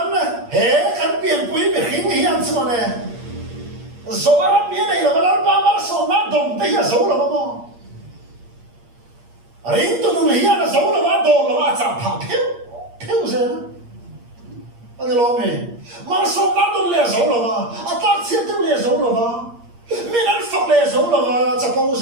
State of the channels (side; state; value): left; late; 8.6 ms